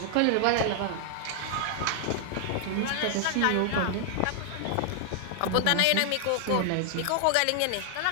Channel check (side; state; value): both; different; correlation 0.00